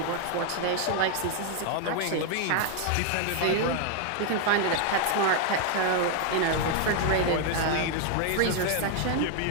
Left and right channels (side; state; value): both; different; correlation 0.00